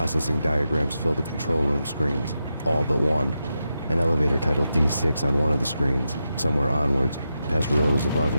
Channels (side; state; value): both; inverted; correlation -0.88